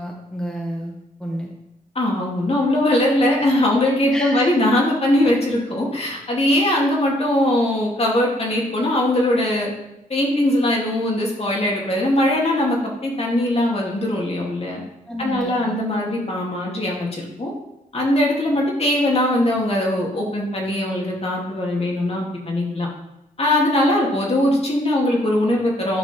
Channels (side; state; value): both; normal; correlation 0.66